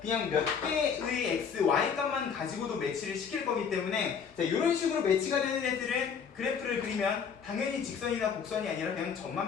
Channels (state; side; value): quieter; right; 6.7 dB